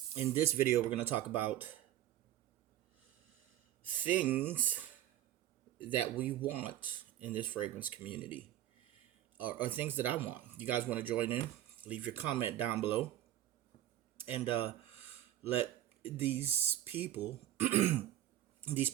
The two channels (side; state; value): left; quieter; 13.0 dB